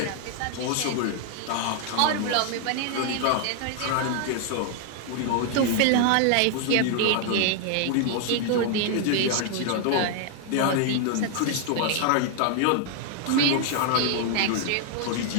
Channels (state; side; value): different; both; correlation 0.00